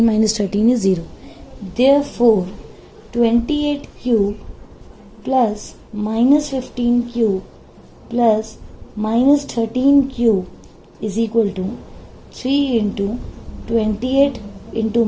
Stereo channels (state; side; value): identical; both; correlation 1.00